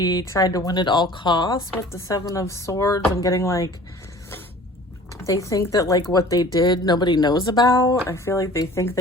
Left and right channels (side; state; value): both; normal; correlation 0.46